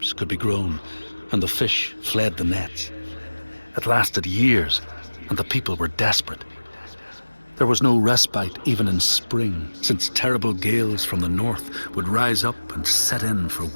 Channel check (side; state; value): both; inverted; correlation -1.00